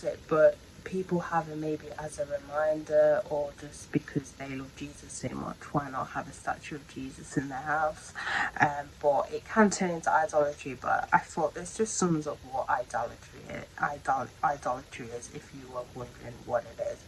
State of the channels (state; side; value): identical; both; correlation 1.00